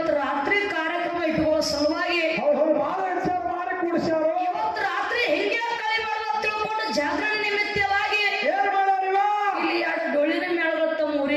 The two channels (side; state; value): both; identical; correlation 1.00